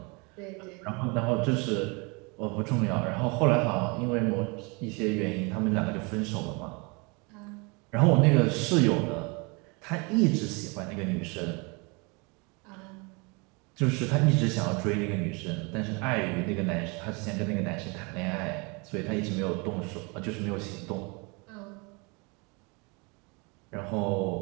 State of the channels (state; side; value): quieter; left; 29.8 dB